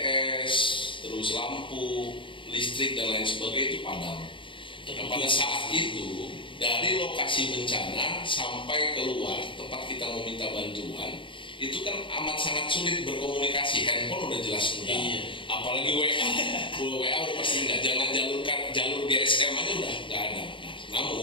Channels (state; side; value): late; right; 0.25 ms